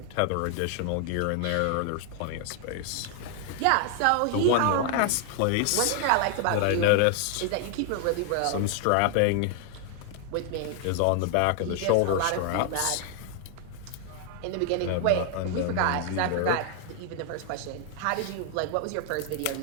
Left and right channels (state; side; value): different; both; correlation 0.00